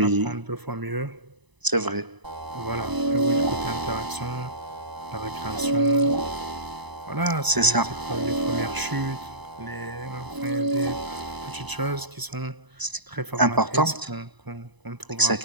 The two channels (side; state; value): left; late; 1.0 ms